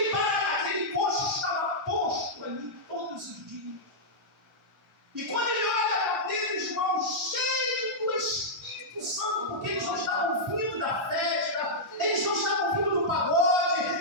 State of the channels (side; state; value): both; normal; correlation -0.09